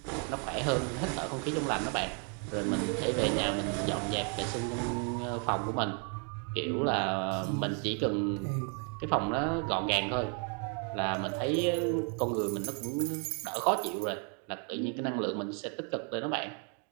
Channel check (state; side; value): quieter; left; 39.5 dB